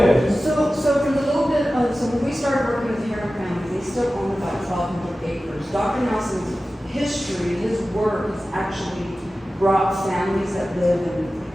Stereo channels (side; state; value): both; normal; correlation 0.95